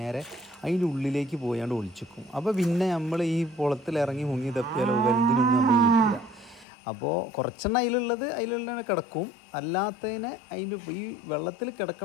അതിൻ്റെ ഉള്ളിലേക്ക് പോയാണ്ട് ഒളിച്ചിക്കും. അപ്പോൾ പിന്നെ നമ്മൾ ഈ കുളത്തിലിറങ്ങി മുങ്ങി തപ്പിയാലോ വലുതിനൊന്നും നമ്മൾ കിട്ടില്ല. അപ്പോൾ കുറച്ചെണ്ണം അതിലുള്ള കിടക്കും, അല്ലാത്തതിനെ അതിൻ്റെ ഈ വെള്ളത്തിൽ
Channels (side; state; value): right; drops out; at 6.7 s